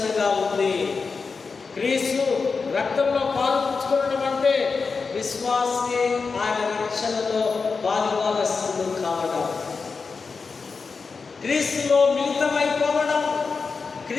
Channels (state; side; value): quieter; right; 4.8 dB